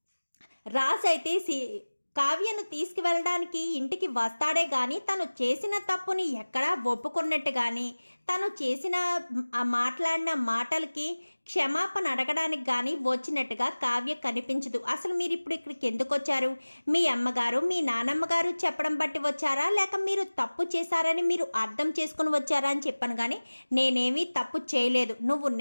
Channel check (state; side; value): inverted; both; correlation -1.00